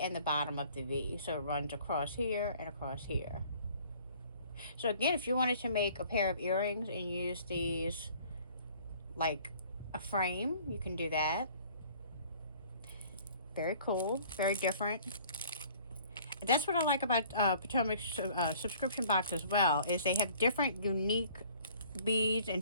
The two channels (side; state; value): both; inverted; correlation -0.53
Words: the bottom of the V. So it runs across here and across here. So again, if you wanted to make a pair of earrings and use these like a frame, you can do that. Very cool. Very different. That's what I like about Potomac's subscription box as well, is they have different unique beads and